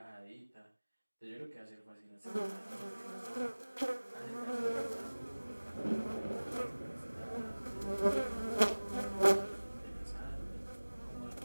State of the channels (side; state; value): both; inverted; correlation -1.00